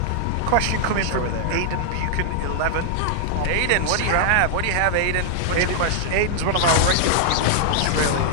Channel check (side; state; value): both; different; correlation -0.01